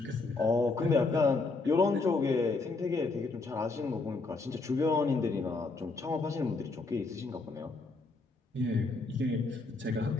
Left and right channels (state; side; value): quieter; right; 3.7 dB